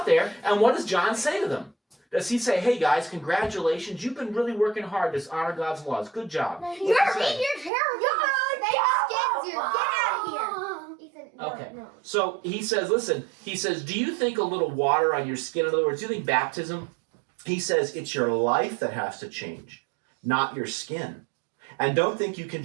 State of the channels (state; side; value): drops out; left; at 7.7 s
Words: there, and what does John say to them? Does he say, hey guys, congratulations, you've been really working hard to honor God's laws. Good job. No, What's he say? your hair. Get out of here. Ethan, no, Okay. no. So he says, listen, do you think a little water on your skin, in other words, do you think baptism? He says it's your life that has to change, not your skin. And don't think you can